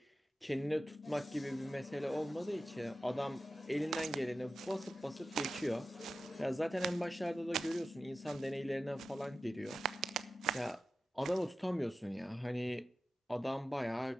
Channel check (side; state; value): both; normal; correlation 0.93